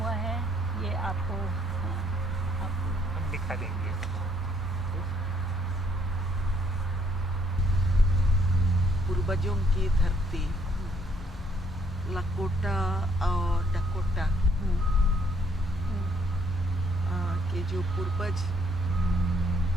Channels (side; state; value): both; normal; correlation 0.67